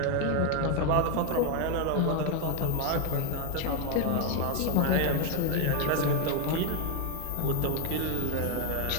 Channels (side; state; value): both; different; correlation 0.02